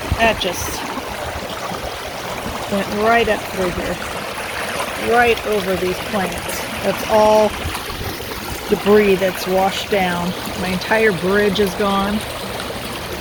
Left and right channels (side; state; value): both; identical; correlation 1.00